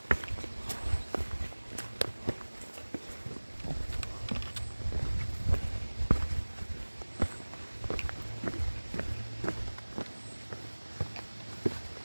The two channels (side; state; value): both; inverted; correlation -1.00